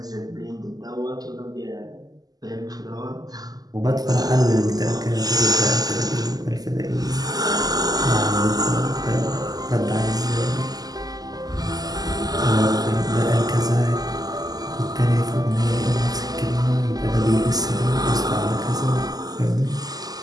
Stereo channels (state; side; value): late; left; 0.18 ms